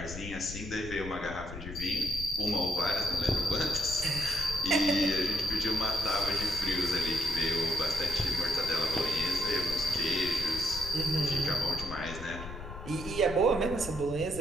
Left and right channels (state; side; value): noise; left; rumble, 10 dB below the sound